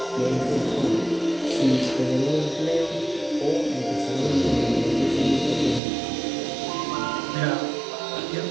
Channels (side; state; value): left; drops out; at 5.8 s